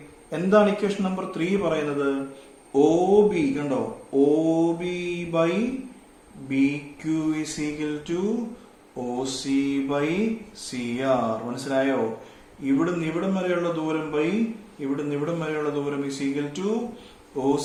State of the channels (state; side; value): identical; both; correlation 1.00